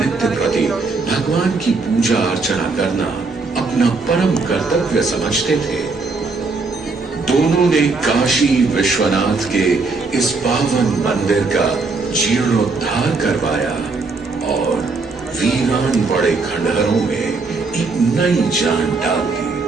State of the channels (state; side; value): quieter; left; 3.9 dB